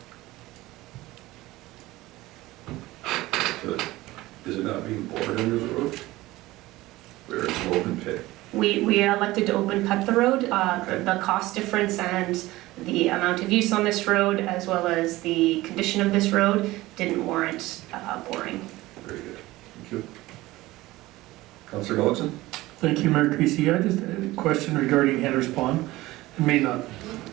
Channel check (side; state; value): left; quieter; 18.4 dB